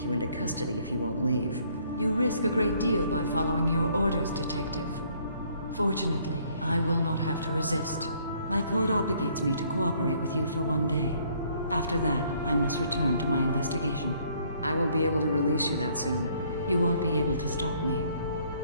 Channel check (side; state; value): both; inverted; correlation -0.64